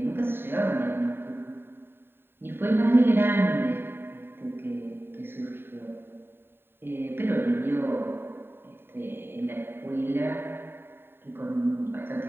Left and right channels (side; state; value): left; late; 0.11 ms